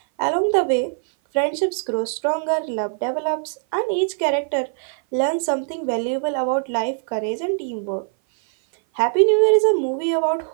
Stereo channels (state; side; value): silent; left; 58 dB below the other